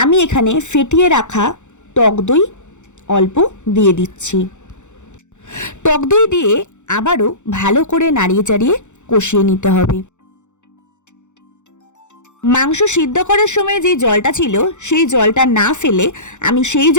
এখানে ফেটিয়ে রাখা টক দই অল্প দিয়ে দিচ্ছি। টক দই দিয়ে আবারও ভালো করে নাড়িয়ে চাড়িয়ে কষিয়ে নিতে হবে। মাংস সিদ্ধ করার সময় যে জলটা ছিল সেই জলটা না ফেলে আমি সেই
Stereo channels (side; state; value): right; late; 0.84 ms